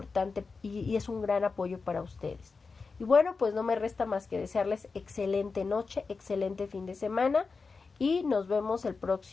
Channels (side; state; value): right; quieter; 4.5 dB